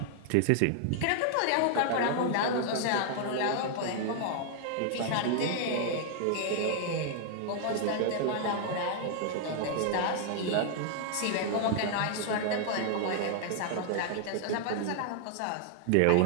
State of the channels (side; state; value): both; different; correlation 0.00